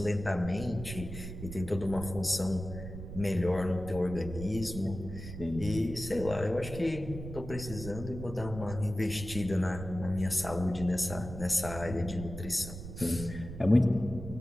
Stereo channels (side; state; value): right; noise; rumble, 10 dB below the sound